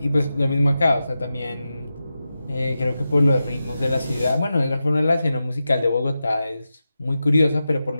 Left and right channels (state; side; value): inverted; both; correlation -0.91